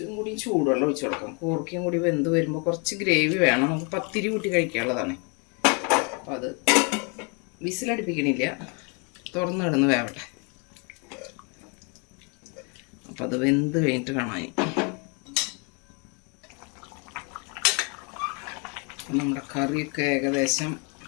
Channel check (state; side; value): quieter; right; 34.6 dB